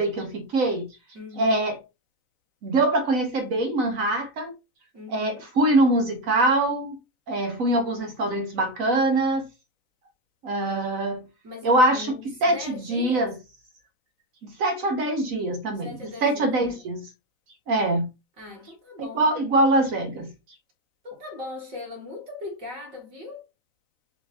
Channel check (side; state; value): left; late; 4.0 ms